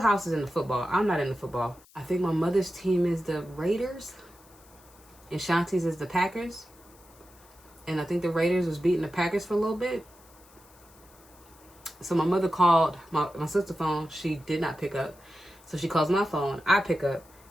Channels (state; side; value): noise; left; hiss, 26 dB below the sound